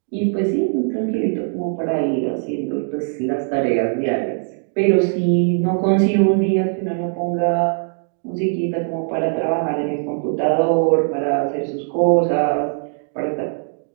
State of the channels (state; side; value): silent; left; 58 dB below the other